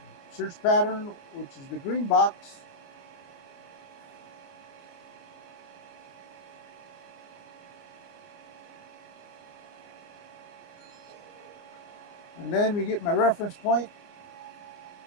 search pattern, which is the green box. And then we get my reference point.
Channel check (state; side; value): late; right; 29 ms